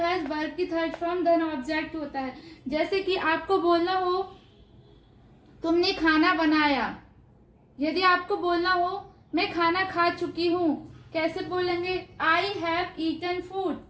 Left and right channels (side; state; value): both; identical; correlation 1.00